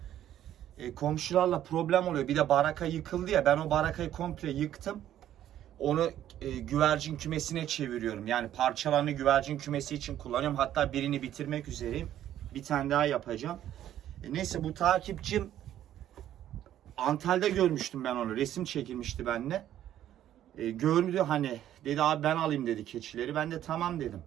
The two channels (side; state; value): left; quieter; 11.7 dB